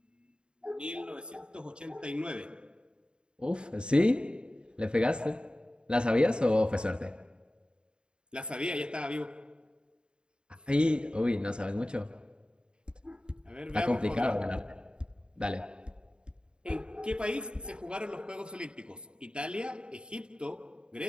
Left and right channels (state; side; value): late; left; 0.051 ms